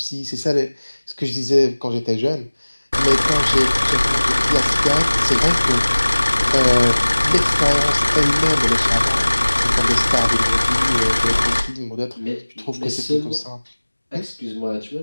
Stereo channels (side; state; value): both; inverted; correlation -1.00